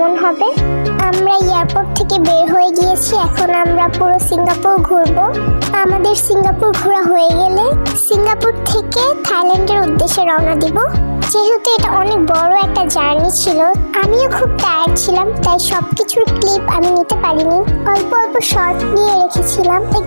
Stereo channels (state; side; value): inverted; both; correlation -1.00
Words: হবে। আমরা এয়ারপোর্ট থেকে বের হয়ে গিয়েছি, এখন আমরা পুরো সিঙ্গাপুর ঘুরবো। আমাদের সিঙ্গাপুর ঘোরা হয়ে গেলে সিঙ্গাপুর থেকে থাইল্যান্ডের উদ্দেশ্যে রওনা দিব। যেহেতু এটা অনেক বড় একটা জার্নি ছিল, আমিও খুব টায়ার্ড ছিলাম, তাই সবকিছুর ক্লিপ আমি নিতে পারিনি। অল্প অল্প শর্ট নিয়ে রেখেছিলাম,